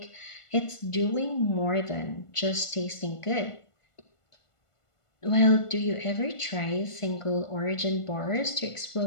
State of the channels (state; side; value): late; right; 1.5 ms